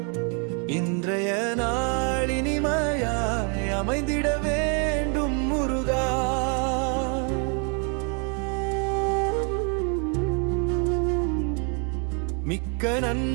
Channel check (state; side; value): quieter; left; 37.8 dB